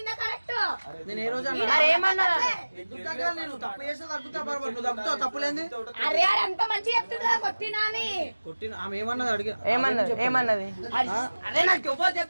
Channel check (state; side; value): inverted; both; correlation -1.00